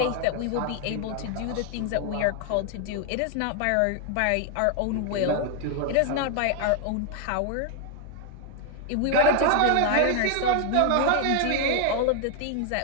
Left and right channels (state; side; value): different; both; correlation 0.00